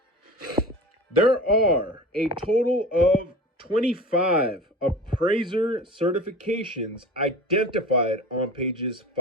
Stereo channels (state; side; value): normal; both; correlation 0.36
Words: There are a total of 25 appraiser certifications identified on pages